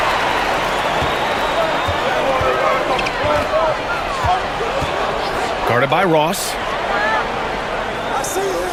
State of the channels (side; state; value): both; identical; correlation 1.00